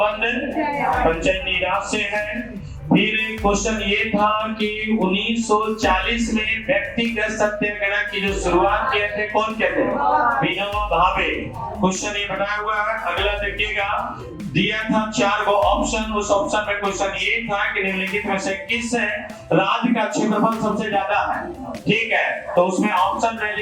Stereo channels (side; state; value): both; identical; correlation 1.00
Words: पंचायती राज से है। फिर क्वेश्चन ये था कि 1940 में व्यक्तिगत सत्याग्रह की जो शुरुआत किए थे कौन किए थे? विनोबा भावे। क्वेश्चन ये बनाया हुआ है, अगला देखिएगा, दिया था 4 गो ऑप्शन। उस ऑप्शन में क्वेश्चन ये था कि निम्नलिखित में से किस राज्य का क्षेत्रफल सबसे ज्यादा है? ठीक है, तो उसमें ऑप्शन